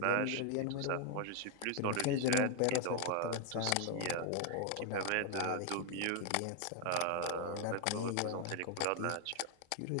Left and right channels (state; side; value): different; both; correlation 0.00